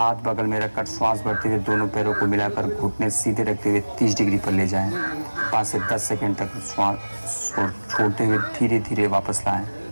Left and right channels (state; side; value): inverted; both; correlation -1.00